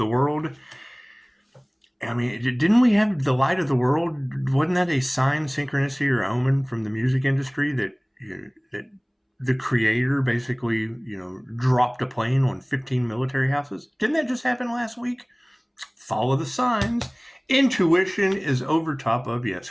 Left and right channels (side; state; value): both; identical; correlation 1.00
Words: world. I mean, didn't we have the light of the world? Wasn't that a sign, synchronicity, or omen from the music industry that the creator basically, dropped a plane on 15 military houses? Didn't that just happen last week? Follow the signs. Intuition is over top of, yes,